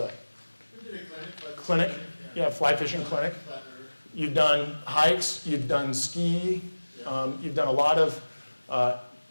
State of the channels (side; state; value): both; inverted; correlation -1.00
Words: clinic? Yeah, fly fishing clinic. You've done hikes, you've done ski, you've done a lot of